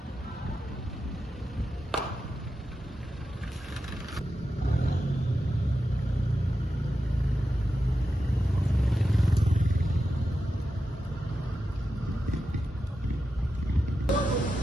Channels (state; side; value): normal; both; correlation 0.90